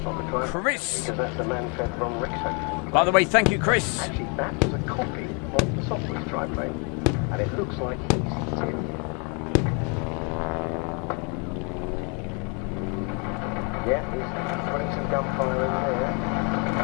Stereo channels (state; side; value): quieter; right; 35.3 dB